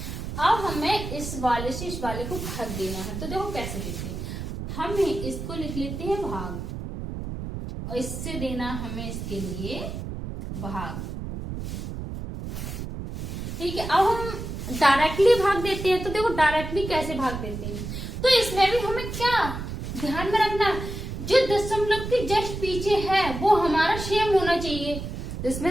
अब हमें इस वाले से इस वाले को भाग देना है, तो देखो कैसे देते हैं। हम इसको लिख लेते हैं भाग, और इससे देना हमें इसके लिए भाग, ठीक है। अब हम डायरेक्टली भाग देते हैं, तो देखो डायरेक्टली कैसे भाग देते हैं। तो इसमें भी हमें क्या ध्यान में रखना, जो दशमलव के जस्ट पीछे है वो हमारा सेम होना चाहिए। तो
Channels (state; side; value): noise; right; rumble, 6 dB below the sound